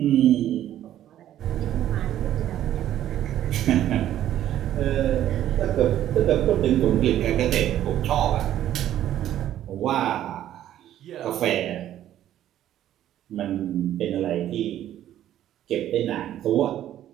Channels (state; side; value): quieter; left; 12.0 dB